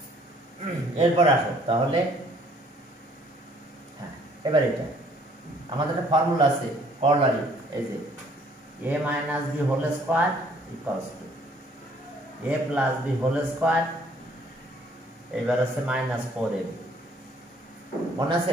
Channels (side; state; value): both; normal; correlation 0.60